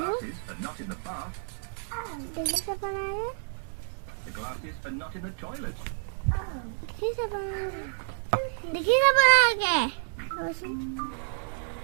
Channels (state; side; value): silent; left; digital silence